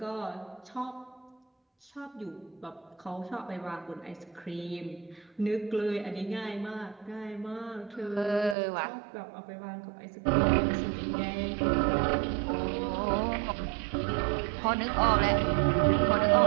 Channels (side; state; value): left; drops out; at 8.6 s